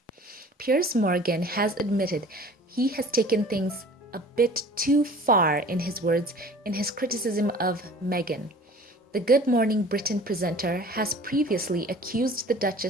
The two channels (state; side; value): normal; both; correlation 0.46